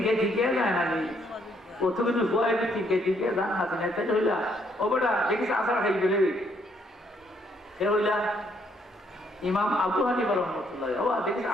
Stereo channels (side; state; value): both; normal; correlation 0.70